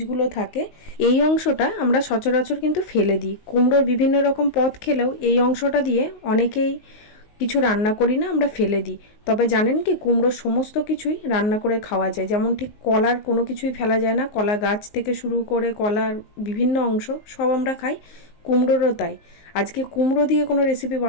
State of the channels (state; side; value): late; right; 19 ms